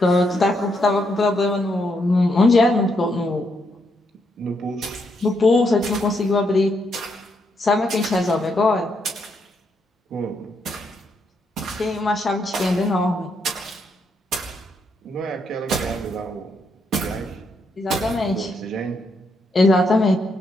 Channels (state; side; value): normal; both; correlation 0.78